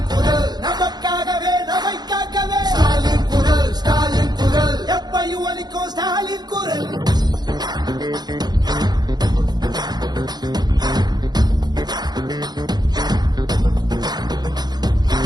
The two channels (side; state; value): left; late; 0.20 ms